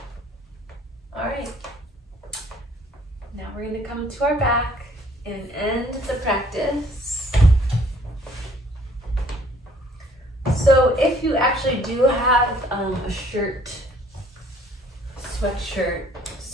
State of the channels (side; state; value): both; normal; correlation 0.59